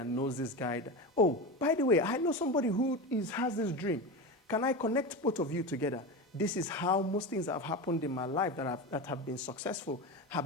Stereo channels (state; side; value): normal; both; correlation 0.23